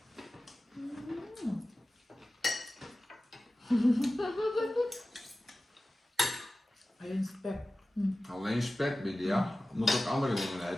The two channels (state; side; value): normal; both; correlation 0.96